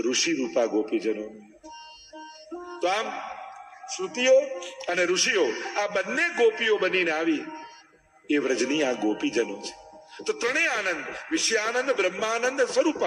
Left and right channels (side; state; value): both; identical; correlation 1.00